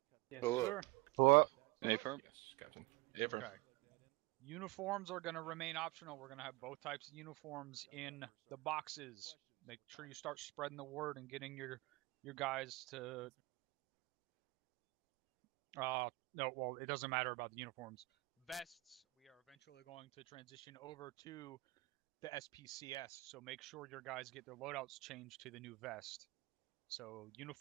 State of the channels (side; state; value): left; quieter; 21.9 dB